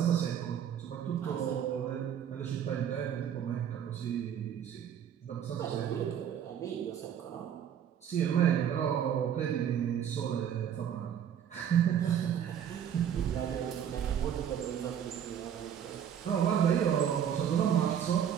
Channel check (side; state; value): left; quieter; 9.0 dB